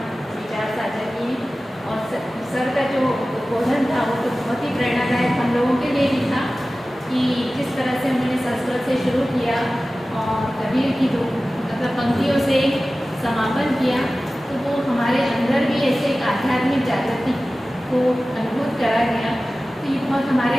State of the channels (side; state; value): both; normal; correlation 0.96